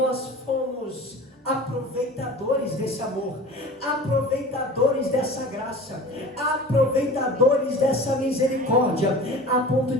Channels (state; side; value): normal; both; correlation 0.38